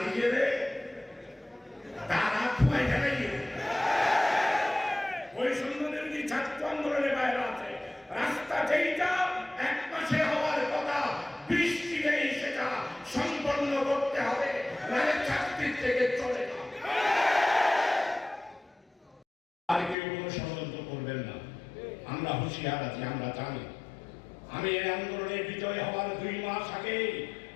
গেলে তারা খুয়াই গেলে ওই সম্বন্ধে ছাত্র আন্দোলনের বাইরে আছে। রাস্তা যেইটা 1 মাসে হওয়ার কথা, বৃষ্টি নেই, সেটা সম্পন্ন করতে হবে, নাহলে চাকরির থেকে চলে না। আর কেউ কোনো ষড়যন্ত্র করবেন না, আমরা হুঁশিয়ার আছি, আমরা জানি। আমি এই আন্দোলনে বিজয় হওয়ার 2 মাস আগে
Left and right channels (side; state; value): right; drops out; at 20.0 s